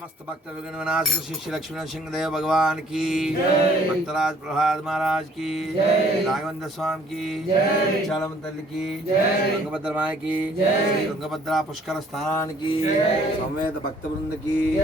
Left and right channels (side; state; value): both; normal; correlation 0.59